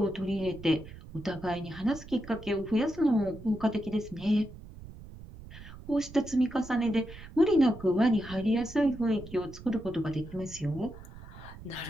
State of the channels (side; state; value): right; noise; rumble, 16 dB below the sound